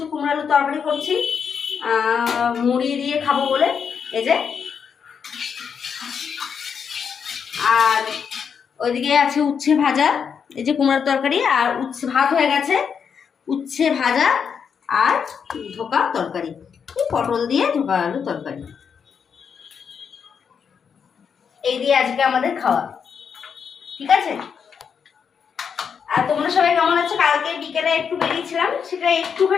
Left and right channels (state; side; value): quieter; right; 6.8 dB